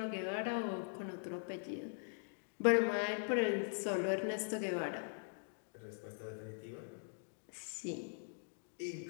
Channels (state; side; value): silent; right; digital silence